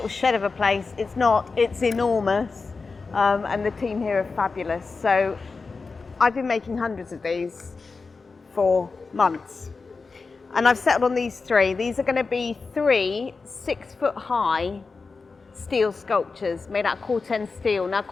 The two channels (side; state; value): right; quieter; 4.3 dB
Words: shed of a place. It's not, it's enormous. And the team here are fabulous. So I've been making hundreds of these for months. And I've settled on these three. These are going to be 3 6-foot-high steel sculptures made out of Corten steel. Now